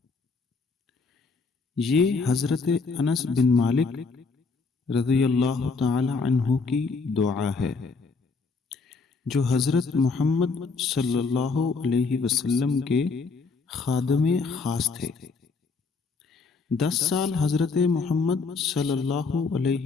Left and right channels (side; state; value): right; quieter; 4.4 dB